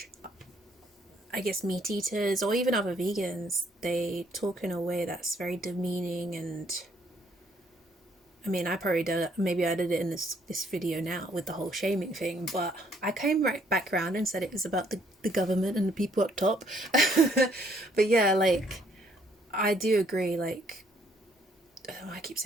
I guess, meat eaters or even other vegans, they talk in a way that's very demeaning. And I mean, I probably did, maybe I did it in this video now with the whole shaming thing, but I came right back around and said it was about the government and the people up top. But yeah, I do agree, I keep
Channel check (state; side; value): normal; both; correlation 0.66